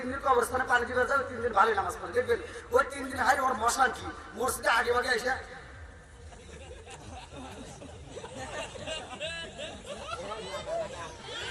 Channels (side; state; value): both; identical; correlation 1.00